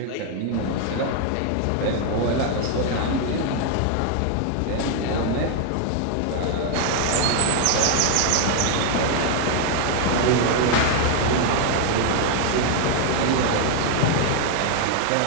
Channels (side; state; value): both; different; correlation 0.00